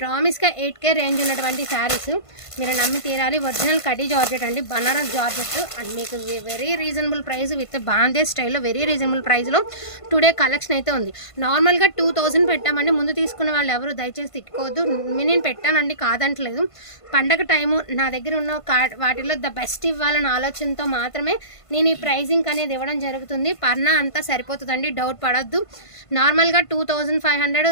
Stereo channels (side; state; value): right; late; 1.5 ms